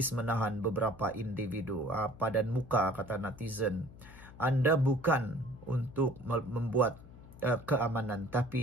menahan beberapa individu. Padan muka, kata netizen. Anda bukan untuk membuat keamanan,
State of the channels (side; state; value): left; noise; hum, 18 dB below the sound